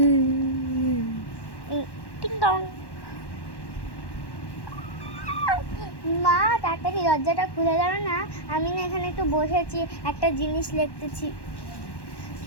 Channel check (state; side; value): late; right; 1.1 ms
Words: টিং টং। মা তাড়াতাড়ি দরজাটা খুলে দাও না, আমি না এখানে একটু বসেছি, একটা জিনিস লিখতেছি।